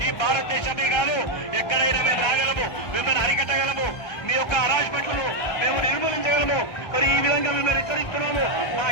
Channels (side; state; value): right; late; 1.3 ms